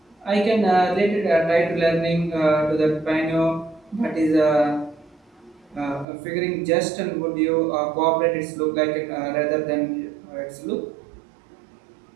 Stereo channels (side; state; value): left; drops out; at 6.1 s